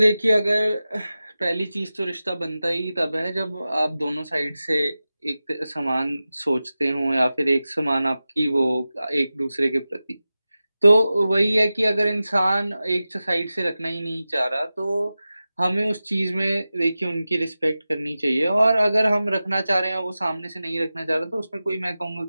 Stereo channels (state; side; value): inverted; both; correlation -0.95